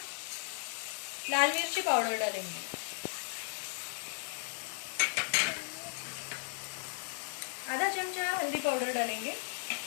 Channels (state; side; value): silent; right; digital silence